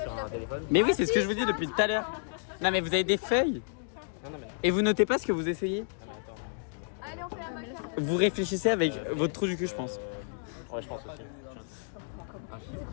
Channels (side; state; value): right; silent; digital silence